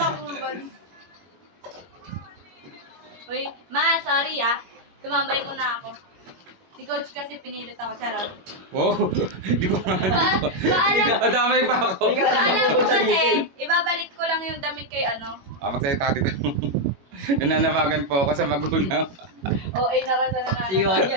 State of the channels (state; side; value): late; left; 21 ms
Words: Uy, ma, sorry ah. Tumambay muna ako. Si coach kasi pinilit ako, charot. Wow. Hindi ko Paalam, Adamay pa ako. paalam ko kasi, ibabalik ko lang yung damit kay ano. Magsalita dito. Nananabagan po ako sa magulang. O, ay naman sa nananaw. Si Juan